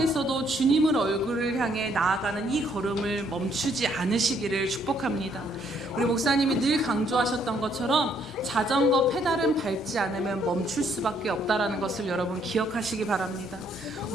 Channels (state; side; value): normal; both; correlation 0.68